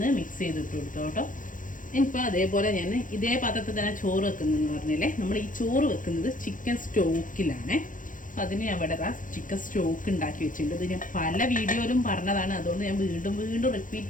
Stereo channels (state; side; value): late; right; 0.38 ms